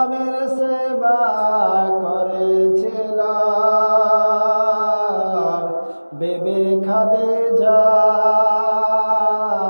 সেবা করেছিল বেবি খাদিজা,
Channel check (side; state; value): both; inverted; correlation -1.00